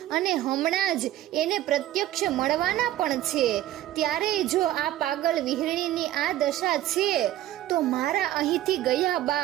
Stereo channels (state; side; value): quieter; left; 13.9 dB